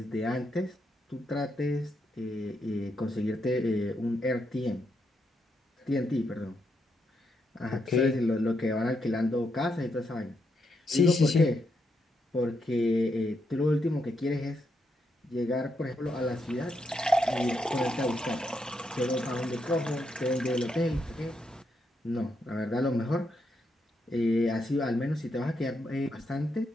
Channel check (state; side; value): normal; both; correlation 0.81